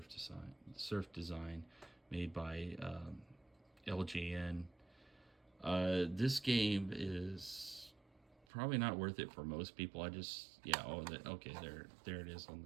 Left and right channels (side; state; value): left; drops out; at 8.5 s